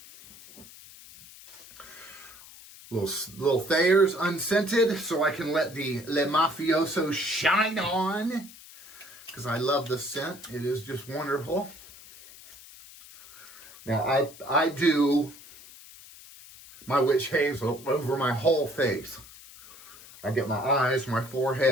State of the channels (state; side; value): noise; left; hiss, 19 dB below the sound